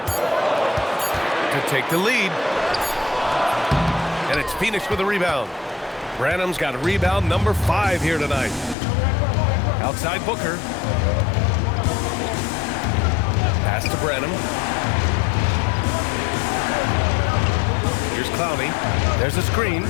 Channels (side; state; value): right; drops out; at 8.8 s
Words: To take the lead. And it's Phoenix with a rebound. Branham's got a rebound number 5 here tonight. Outside Booker. Pass to Branham. Here's Clowney. There's a screen.